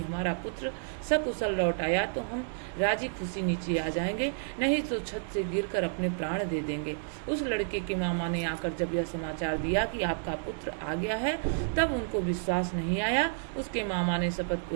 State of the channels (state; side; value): silent; left; digital silence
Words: हमारा पुत्र सकुशल लौट आया तो हम राजी खुशी नीचे आ जाएंगे, नहीं तो छत से गिरकर अपने प्राण दे देंगे। उस लड़के के मामा ने आकर जब यह समाचार दिया कि आपका पुत्र आ गया है, तब उनको विश्वास नहीं आया। उसके मामा ने शपथ